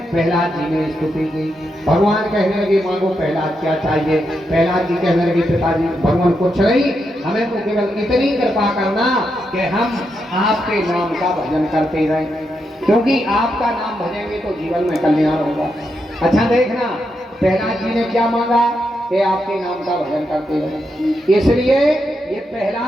प्रहलाद जी ने स्तुति की। भगवान कहने लगे मांगो प्रहलाद क्या चाहिए। प्रहलाद जी कहने लगे पिताजी भगवान कुछ नहीं, हमें तो केवल इतनी कृपा करना कि हम आपके नाम का भजन करते रहें, क्योंकि आपका नाम भजेंगे तो जीवन में कल्याण होगा। अच्छा देखना प्रहलाद जी ने क्या मांगा कि आपके नाम का भजन करते रहे। इसलिए ये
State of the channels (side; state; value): both; normal; correlation 0.83